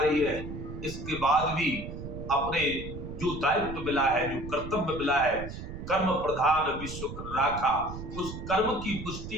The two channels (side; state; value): right; noise; rumble, 9 dB below the sound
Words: है, इसके बाद भी अपने जो दायित्व मिला है, जो कर्तव्य मिला है, कर्म प्रधान विश्व राखा, उस कर्म की